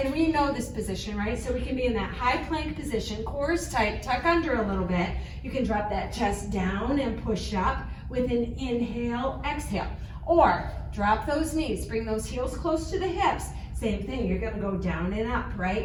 we know this position, right? So we can be in that high plank position, core is tight, tuck under a little bit. You can drop that chest down and push up with an inhale, exhale. Or drop those knees, bring those heels close to the hips. Same thing, you're gonna go down and up,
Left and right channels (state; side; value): identical; both; correlation 1.00